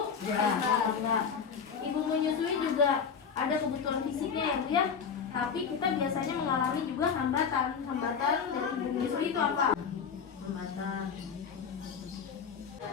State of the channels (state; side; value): quieter; right; 6.5 dB